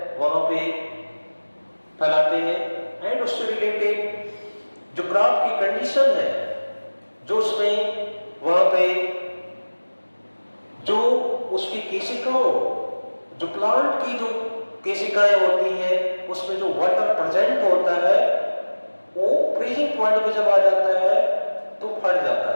वहां पे फैलाते हैं। एंड उससे रिलेटेड जो क्रॉप की कंडीशन है जो उसमें वहां पे जो उसकी केशिकाओं जो प्लांट की जो केशिकाएं होती हैं उसमें जो वाटर प्रेजेंट होता है वो फ्रीजिंग पॉइंट पे जब आ जाता है तो फट जाता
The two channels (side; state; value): both; inverted; correlation -1.00